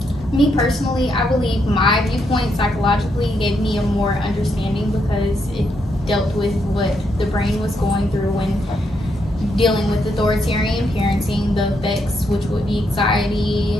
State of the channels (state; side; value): normal; both; correlation 0.78